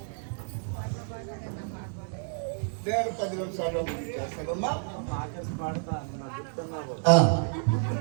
నేను 10 నిమిషాలు చేస్తానమ్మా.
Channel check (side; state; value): left; silent; 57 dB below the other